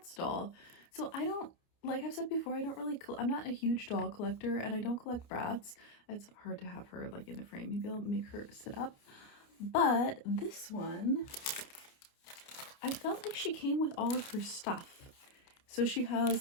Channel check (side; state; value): right; late; 29 ms